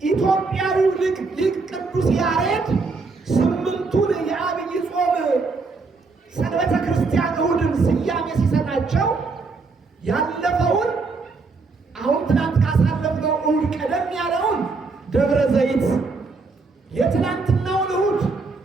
ኢትዮጵያዊው ሊቅ ቅዱስ ያሬድ ስምንቱን የዐቢይ ጾም ሰንበተ ክርስቲያን እሑድን ስያሜ ሲሰጣቸው ያለፈውን አሁን ትናንት ካሳለፍነው እሑድ ቀደም ያለውን ደብረ ዘይት፣ የትናንትናውን እሑድ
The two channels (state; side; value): quieter; left; 4.1 dB